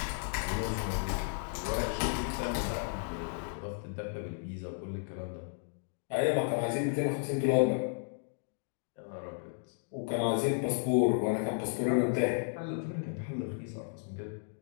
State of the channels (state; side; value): silent; right; digital silence